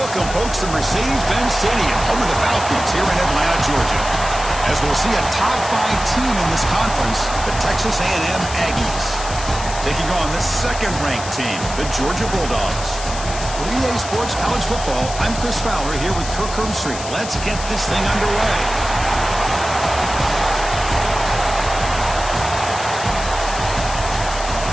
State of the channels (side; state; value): left; noise; hiss, 10 dB below the sound